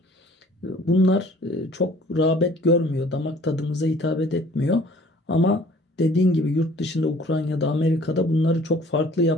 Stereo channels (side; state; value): both; normal; correlation 0.53